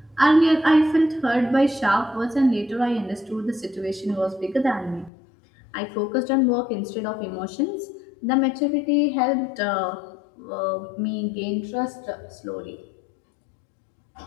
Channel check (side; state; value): right; drops out; at 5.1 s